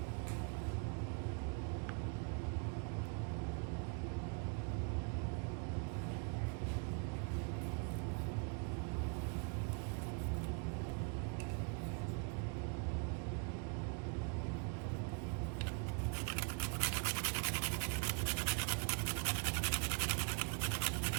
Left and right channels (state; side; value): quieter; left; 35.3 dB